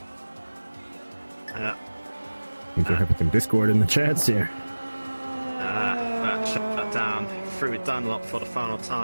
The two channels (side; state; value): both; inverted; correlation -1.00